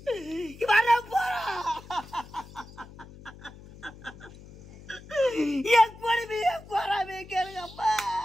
என் கொடுமைய போறாமே கேளுங்கப்பா.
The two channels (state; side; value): noise; left; hum, 19 dB below the sound